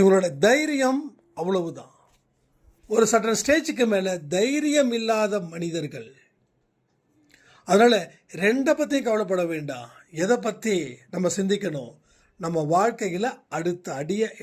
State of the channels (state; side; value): identical; both; correlation 1.00